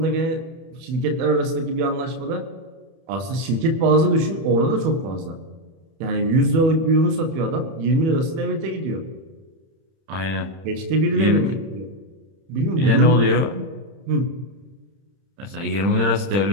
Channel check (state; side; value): late; left; 31 ms